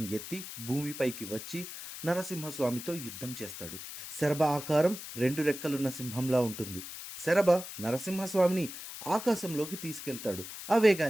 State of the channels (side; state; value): left; noise; hiss, 10 dB below the sound